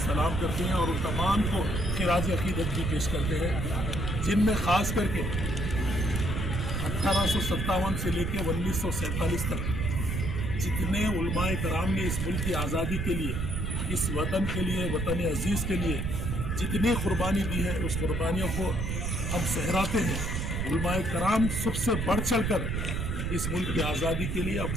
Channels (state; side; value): noise; right; rumble, 1 dB below the sound